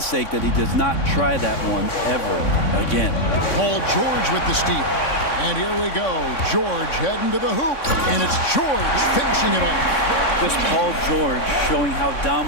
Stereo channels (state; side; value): late; right; 3.6 ms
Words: sake that he does not try that one ever again. Paul George with the steal. And here we go. George heading to the hoop. And it's George finishing it off. Just Paul George showing how